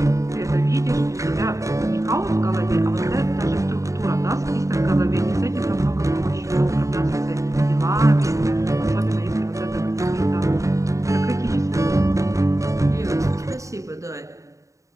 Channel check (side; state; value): left; late; 0.16 ms